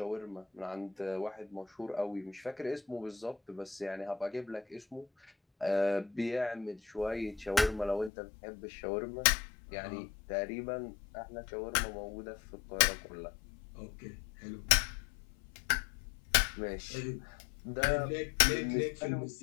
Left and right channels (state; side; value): drops out; right; at 8.1 s